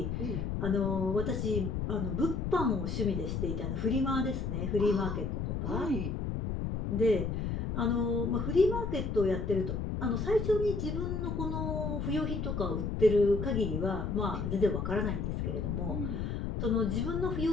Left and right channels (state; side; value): noise; left; rumble, 2 dB below the sound